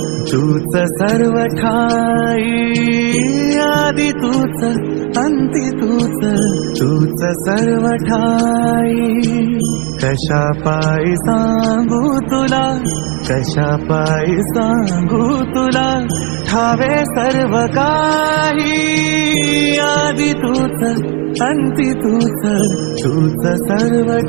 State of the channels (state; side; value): quieter; left; 33.8 dB